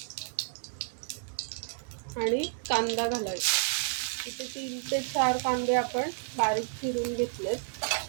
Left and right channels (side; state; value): left; silent; digital silence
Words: आणि कांदा घालायचा. इथे 3 ते 4 कांदे आपण बारीक चिरून घेतलेत